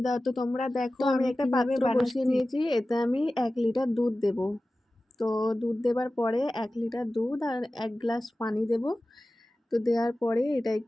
তো তোমরা দেখো, আমি একটা কিভাবে পাত্র বসিয়ে বানাচ্ছি। নিয়েছি। এতে আমি 1 লিটার দুধ দেব। তো দুধ দেবার পরে 1 লিটার দুধ আর 1 গ্লাস পানি দেব। তো দেওয়ার পরে এটা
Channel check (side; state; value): both; normal; correlation 0.96